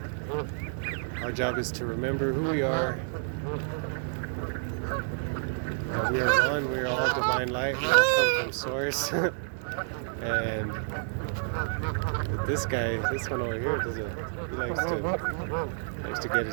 Our job is to remember who we are. We are one, we are all divine light, we all come from source. And this one over here, he likes to get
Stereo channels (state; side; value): silent; left; digital silence